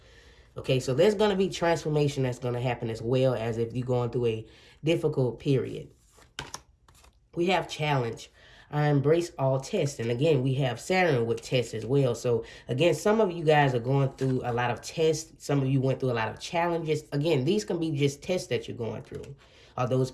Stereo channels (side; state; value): both; identical; correlation 1.00